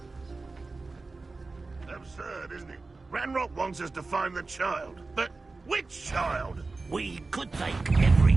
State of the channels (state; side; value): quieter; left; 3.6 dB